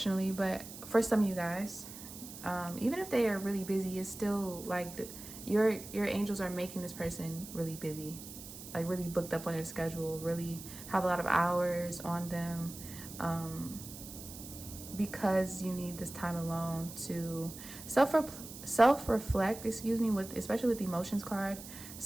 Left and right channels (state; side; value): noise; right; hiss, 13 dB below the sound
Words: But for some of you guys, even if they are really busy, it's still like your angels are making this person really busy, like really booked up on their schedule, really have a lot of hours on them, because you need this time alone to self-reflect, excuse me, with especially with the emotions card,